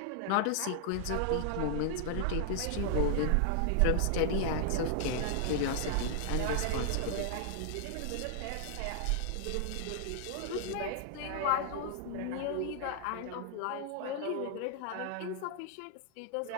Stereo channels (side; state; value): both; different; correlation 0.00